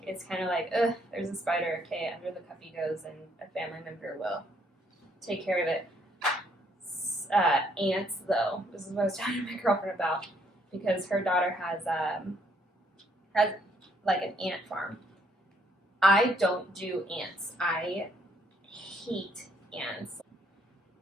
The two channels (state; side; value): normal; both; correlation 0.68